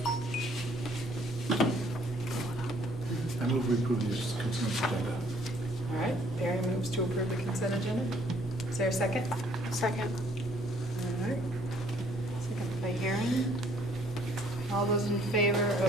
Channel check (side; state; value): both; normal; correlation 0.62